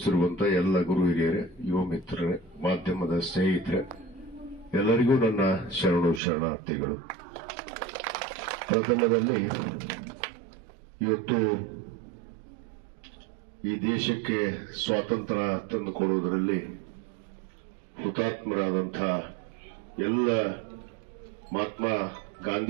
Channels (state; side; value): drops out; left; at 6.2 s